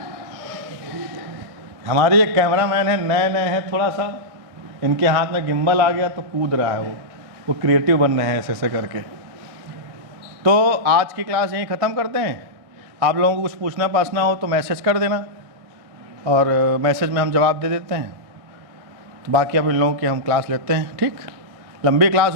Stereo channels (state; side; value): late; left; 1.6 ms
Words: हमारे एक कैमरामैन है, नए हैं थोड़ा सा, इनके हाथ में गिम्बल आ गया तो कूद रहा है वो क्रिएटिव बन रहे हैं ऐसे करके। तो आज की क्लास यहीं ख़त्म करते हैं। आप लोगों को कुछ पूछना पासना हो तो मैसेज कर देना, और मैसेज में हम जवाब दे देते हैं। तो बाकी अब इन लोगों की हम क्लास लेते हैं। ठीक, लंबी क्लास